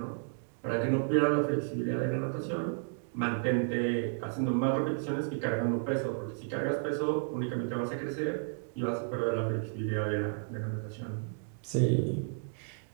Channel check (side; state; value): left; silent; digital silence